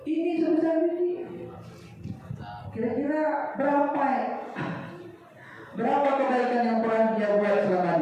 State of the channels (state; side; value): identical; both; correlation 1.00